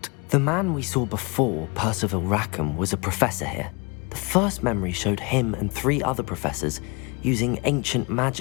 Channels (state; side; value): quieter; right; 29.5 dB